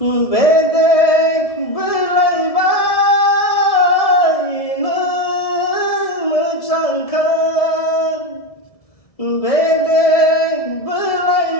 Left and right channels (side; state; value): right; late; 1.7 ms